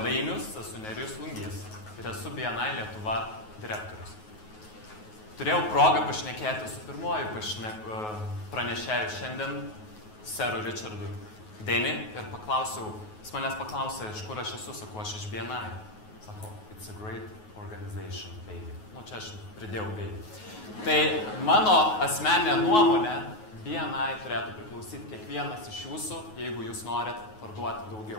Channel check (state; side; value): late; right; 9.4 ms